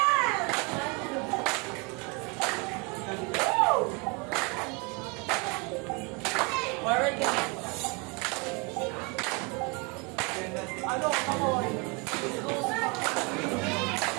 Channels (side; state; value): left; quieter; 30.6 dB